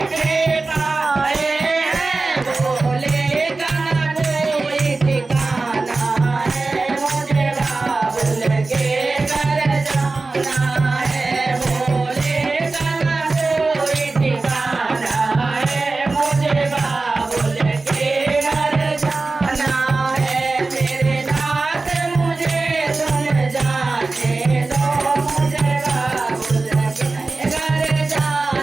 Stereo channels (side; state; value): left; quieter; 3.6 dB